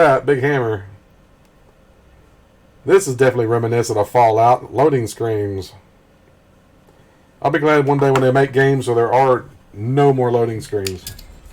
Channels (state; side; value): identical; both; correlation 1.00